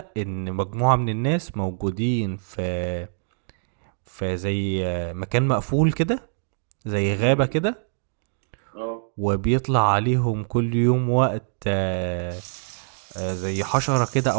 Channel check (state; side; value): silent; left; digital silence